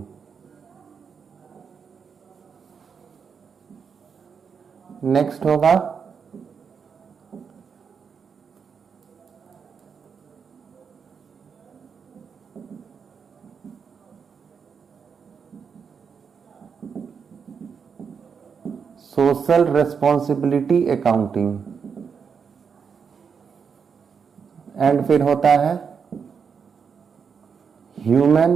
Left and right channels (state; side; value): quieter; left; 6.3 dB